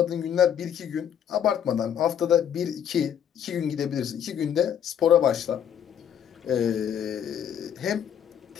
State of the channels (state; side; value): quieter; right; 9.0 dB